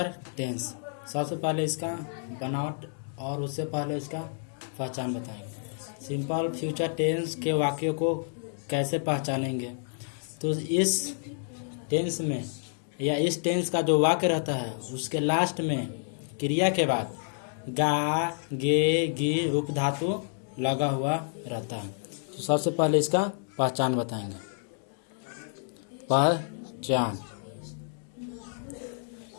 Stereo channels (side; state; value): right; silent; digital silence